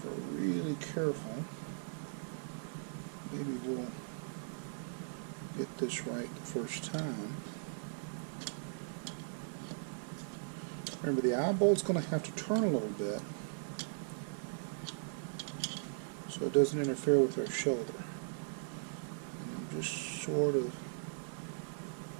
we're really careful, maybe we'll get this right the first time. Remember, the eyebolt's going to have to turn a little bit so it doesn't interfere with our shoulder. Just sort of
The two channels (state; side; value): silent; left; 52 dB below the other